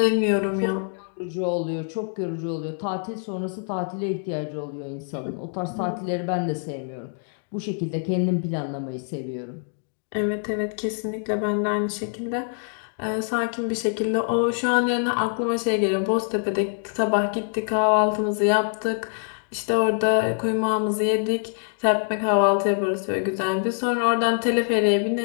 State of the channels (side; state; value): right; silent; 62 dB below the other